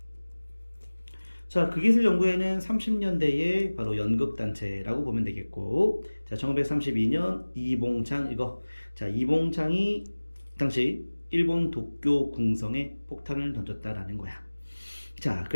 자, 극기술연구회는 30년대에 바로 연극단체라고 보면 되겠고, 자, 1932년 이봉창 이거. 자, 이봉창이 당시 일본 도쿄 궁성에 폭탄을 던졌다라는 거야. 자,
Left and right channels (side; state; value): both; inverted; correlation -1.00